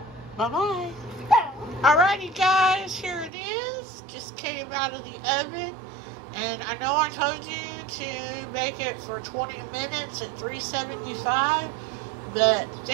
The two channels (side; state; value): left; drops out; at 3.3 s